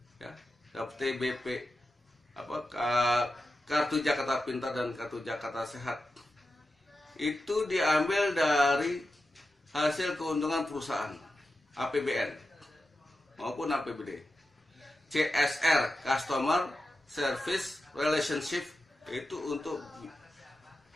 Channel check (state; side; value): normal; both; correlation 0.91